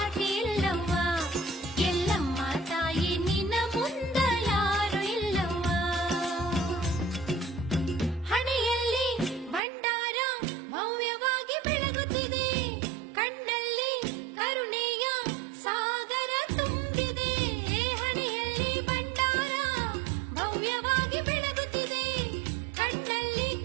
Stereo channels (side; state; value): left; drops out; at 9.6 s